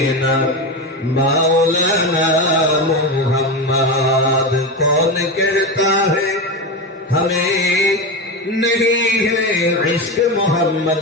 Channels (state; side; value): normal; both; correlation 0.18